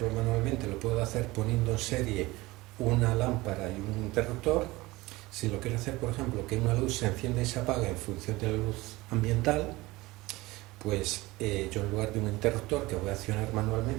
manualmente lo puedo hacer poniendo en serie una lámpara y un interruptor, si lo quiero hacer, por ejemplo, que una luz se encienda y se apaga en función de la luz ambiental, pues yo en lugar de un interruptor que voy a accionar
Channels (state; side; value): quieter; left; 20.6 dB